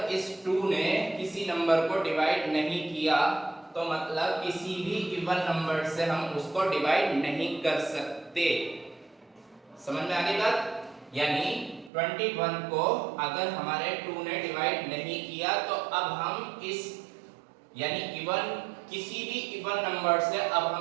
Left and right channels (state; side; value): drops out; left; at 11.9 s